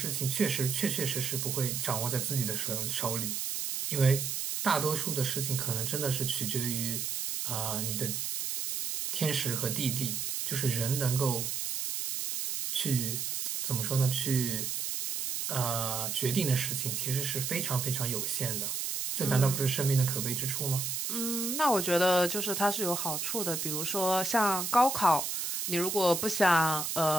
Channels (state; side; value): noise; right; hiss, 2 dB below the sound